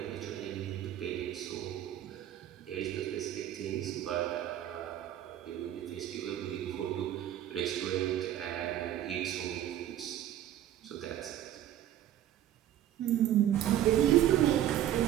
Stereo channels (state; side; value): quieter; left; 11.9 dB